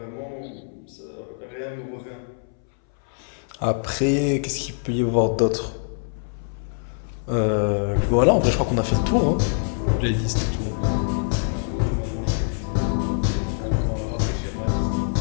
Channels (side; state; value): right; silent; 62 dB below the other